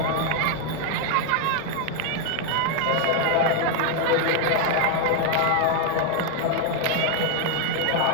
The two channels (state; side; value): different; both; correlation 0.00